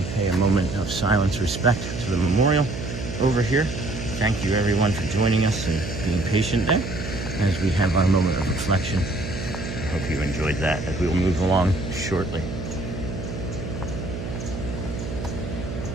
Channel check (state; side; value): noise; right; hum, 7 dB below the sound